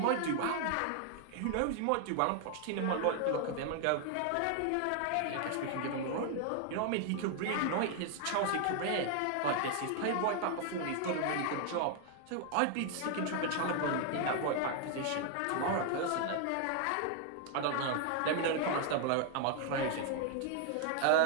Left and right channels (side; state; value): both; different; correlation 0.00